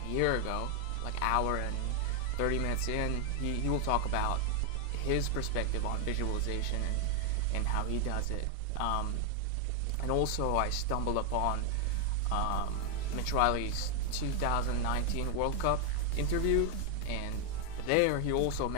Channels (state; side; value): different; both; correlation 0.00